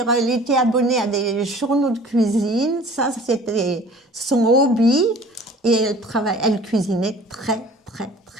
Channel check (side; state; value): both; normal; correlation 0.47